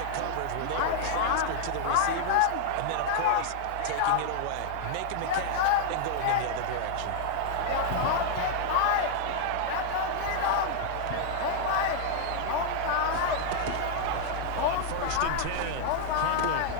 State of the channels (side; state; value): both; different; correlation 0.00